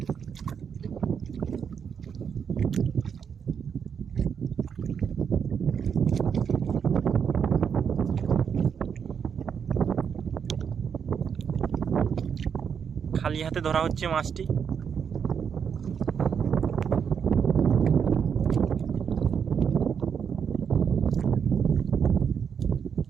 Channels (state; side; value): quieter; left; 7.2 dB